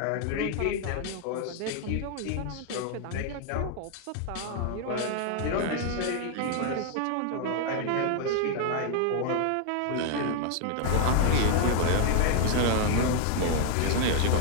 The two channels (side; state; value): both; different; correlation 0.00